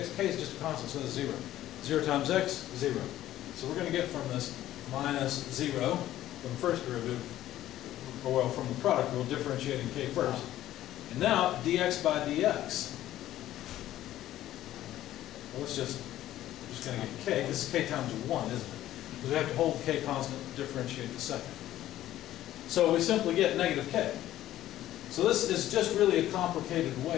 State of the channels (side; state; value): right; quieter; 13.6 dB